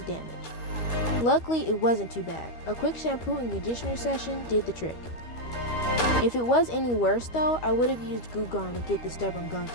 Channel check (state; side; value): late; right; 13 ms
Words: damage. Luckily, it wasn't too bad. A quick shampoo and conditioner session did the trick. If it was any worse though, I would have used Goo Gone to get the stubborn gunk